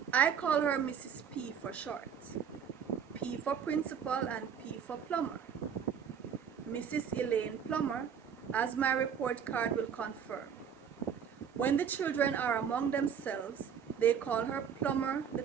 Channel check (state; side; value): quieter; left; 7.6 dB